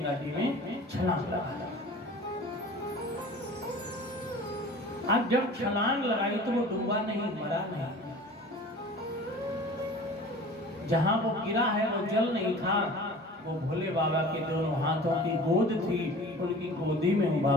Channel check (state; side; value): normal; both; correlation 0.41